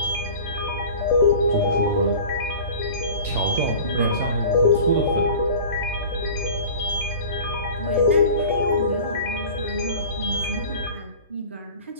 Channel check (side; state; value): both; inverted; correlation -0.40